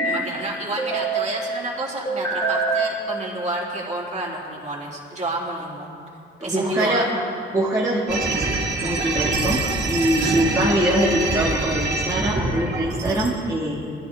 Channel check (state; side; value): normal; both; correlation 0.48